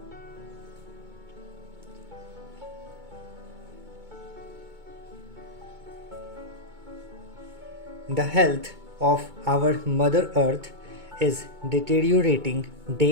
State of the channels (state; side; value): late; left; 2.2 ms